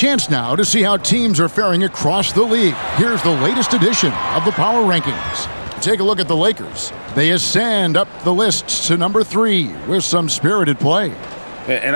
now to see how teams are faring across the league. Here's the latest edition of the Power Rankings. Take a look at the Lakers. They ascend up the list to number 3 with some spirited play. And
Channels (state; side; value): inverted; both; correlation -1.00